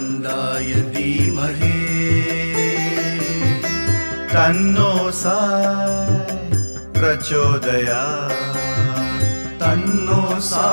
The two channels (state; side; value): inverted; both; correlation -1.00